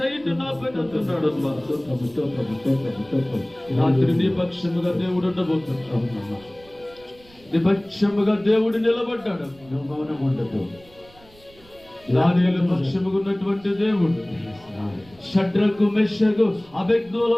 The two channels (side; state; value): right; noise; rumble, 26 dB below the sound